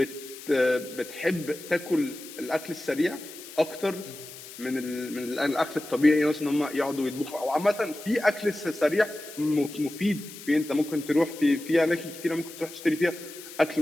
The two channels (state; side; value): noise; left; hiss, 15 dB below the sound